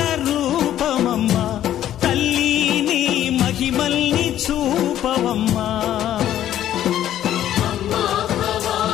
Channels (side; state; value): right; quieter; 11.8 dB